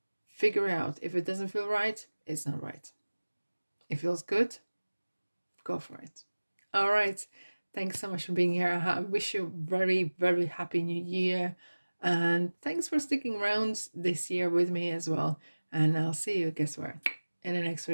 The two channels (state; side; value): inverted; both; correlation -1.00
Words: Figure out if it doesn't feel right, it's not right. It feels good, go for it. All right, thanks so much for being here. I wish you a very, very happy new year, and thanks for sticking around this year with me as well. And I'll see you, guess where, in the next